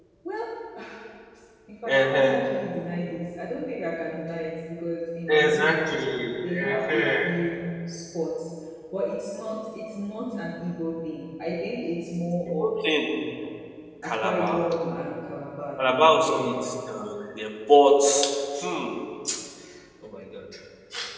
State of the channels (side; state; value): both; identical; correlation 1.00